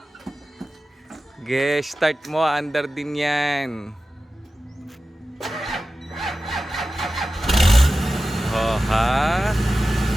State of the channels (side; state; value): both; normal; correlation 0.94